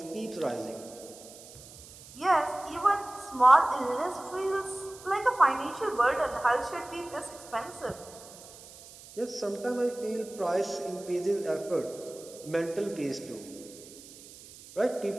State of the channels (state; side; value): noise; right; hiss, 18 dB below the sound